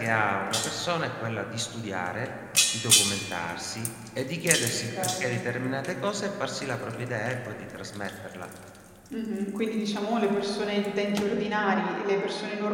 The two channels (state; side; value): identical; both; correlation 1.00